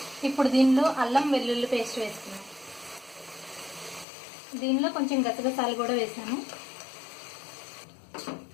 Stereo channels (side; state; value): right; drops out; at 4.0 s